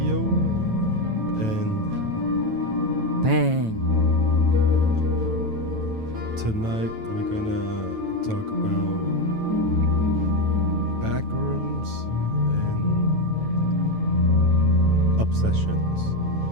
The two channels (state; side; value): late; left; 9.1 ms